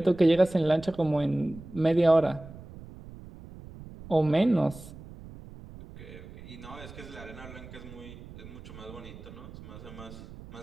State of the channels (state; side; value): noise; right; rumble, 16 dB below the sound